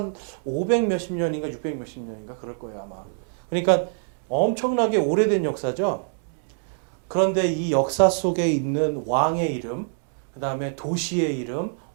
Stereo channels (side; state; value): left; silent; digital silence